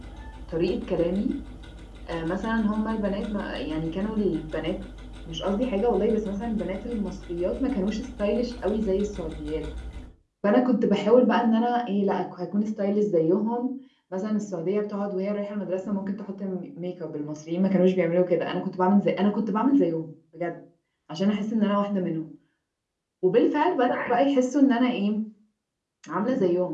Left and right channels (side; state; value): both; identical; correlation 1.00